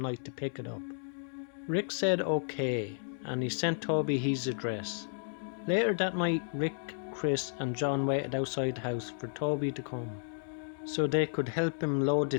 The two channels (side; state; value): right; silent; digital silence